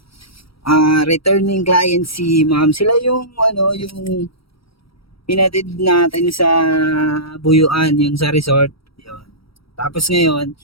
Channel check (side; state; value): right; late; 0.75 ms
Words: Returning client si ma'am. Sila yung yung pinatid natin sa Buyuan, yung sa resort. Yun. Tapos ngayon,